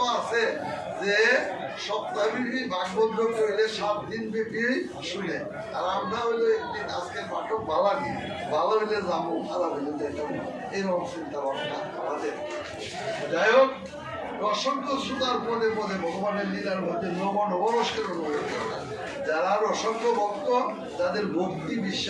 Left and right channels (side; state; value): both; identical; correlation 1.00